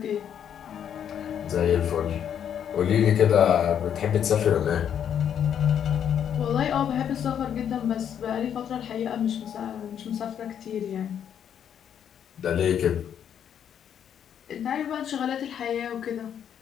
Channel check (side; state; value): right; quieter; 8.9 dB